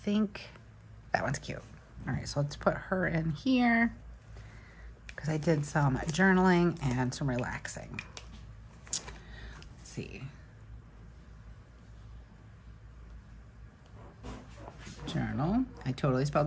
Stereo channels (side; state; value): both; identical; correlation 1.00